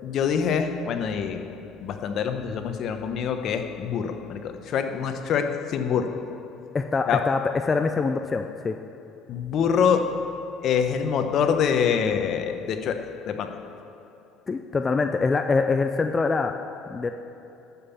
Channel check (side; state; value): right; quieter; 5.6 dB